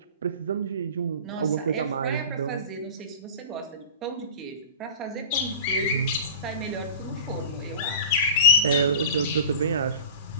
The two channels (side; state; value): both; inverted; correlation -0.35